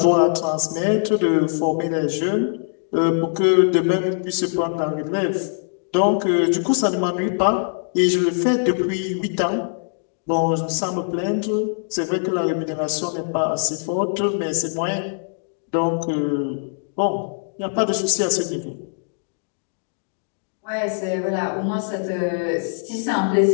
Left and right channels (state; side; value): silent; right; digital silence